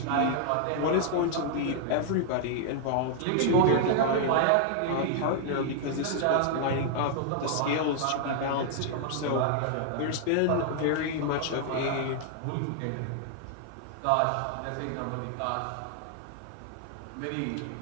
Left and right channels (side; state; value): both; different; correlation -0.01